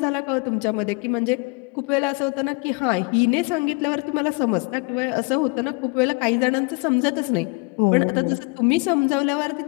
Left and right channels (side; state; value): right; quieter; 29.5 dB